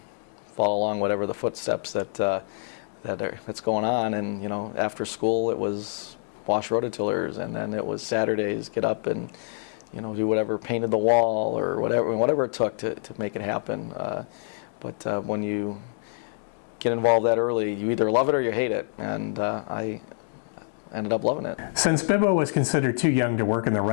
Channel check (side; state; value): right; silent; digital silence